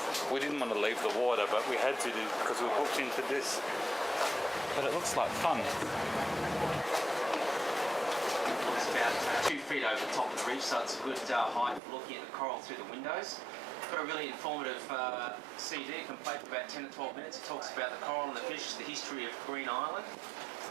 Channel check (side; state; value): left; drops out; at 11.8 s